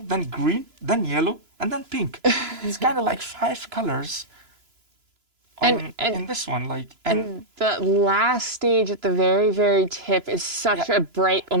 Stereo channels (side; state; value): left; late; 3.0 ms